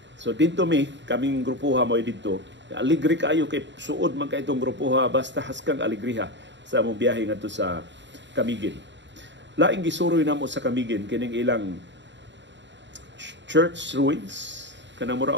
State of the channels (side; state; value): left; late; 0.53 ms